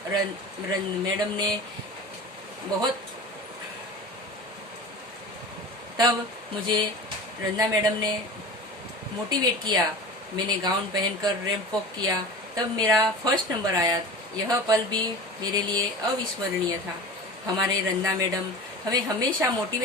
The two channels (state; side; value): normal; both; correlation 0.33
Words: मैडम ने तब मुझे रंजना मैडम ने मोटिवेट किया। मैंने गाउन पहनकर रैंप वॉक किया। तब मेरा फर्स्ट नंबर आया। यह पल भी मेरे लिए अविस्मरणीय था। हमारे रंजना मैडम हमें हमेशा